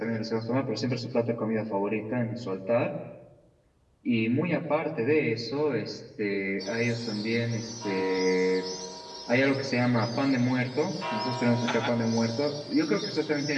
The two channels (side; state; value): both; identical; correlation 1.00